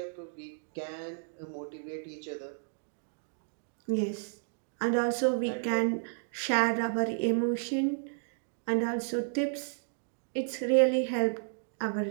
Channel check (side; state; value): left; silent; digital silence